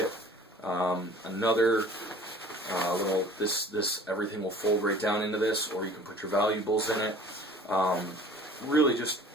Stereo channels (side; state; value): both; normal; correlation 0.48